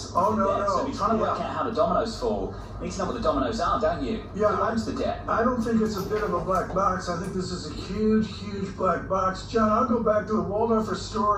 So if you're trying to work out how the dominoes fall, you need to know what the dominoes are, don't you? Yeah, who owns the debt? I don't think it's a bit of a black box. I think this is a huge, huge black box. John, I'll go back to the Waldorf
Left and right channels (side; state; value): both; identical; correlation 1.00